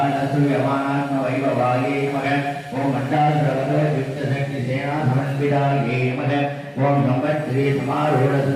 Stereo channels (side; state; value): both; identical; correlation 1.00